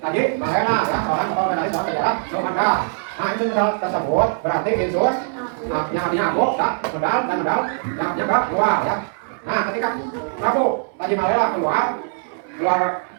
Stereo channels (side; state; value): left; silent; 65 dB below the other